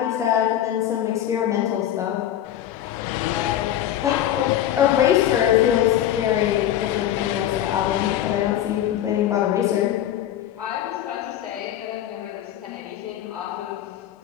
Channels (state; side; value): quieter; right; 11.6 dB